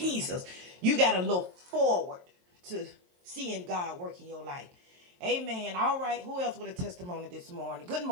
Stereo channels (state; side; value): late; left; 23 ms